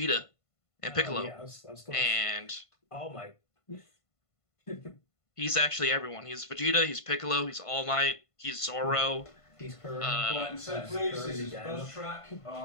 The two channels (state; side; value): late; right; 1.5 ms